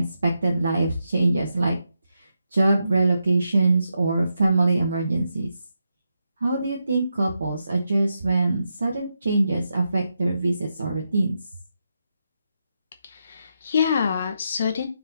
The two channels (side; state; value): both; inverted; correlation -0.85